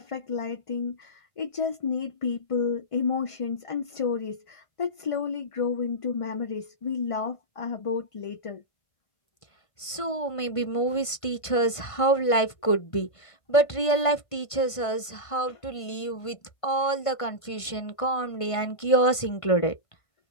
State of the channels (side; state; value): right; late; 1.5 ms